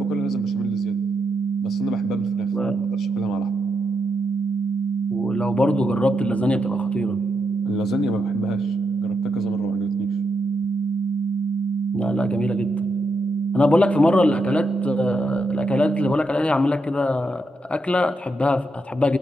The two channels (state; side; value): normal; both; correlation 0.83